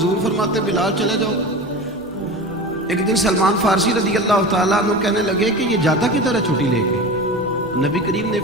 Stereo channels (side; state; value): both; normal; correlation 0.30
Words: فرماتے بلال چلے جاؤ۔ ایک دن سلمان فارسی رضی اللہ تعالیٰ عنہ کہنے لگے کہ یہ جاتا کدھر ہے چھٹی لے کے؟ نبی کریم نے